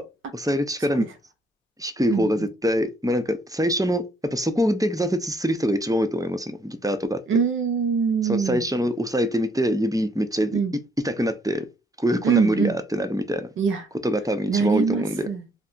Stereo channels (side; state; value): both; normal; correlation 0.68